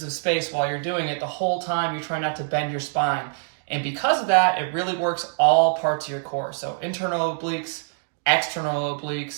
of space while you're doing it, the whole time you're trying not to bend your spine. And because of that, it really works all parts of your core. So internal obliques, external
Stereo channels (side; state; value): left; silent; digital silence